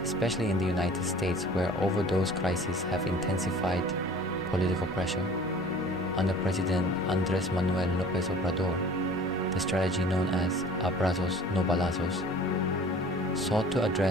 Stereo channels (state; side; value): normal; both; correlation 0.46